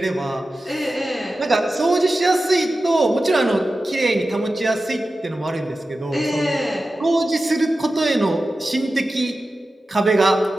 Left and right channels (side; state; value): both; normal; correlation 0.94